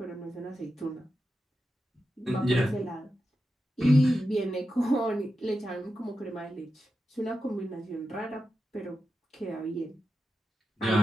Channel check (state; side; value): normal; both; correlation 0.90